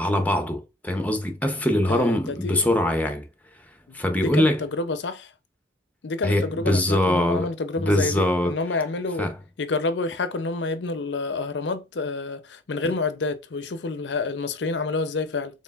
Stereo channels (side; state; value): both; normal; correlation 0.55